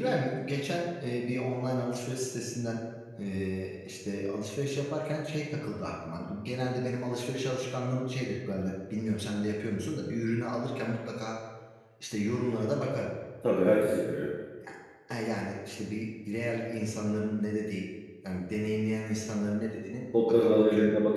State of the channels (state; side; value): identical; both; correlation 1.00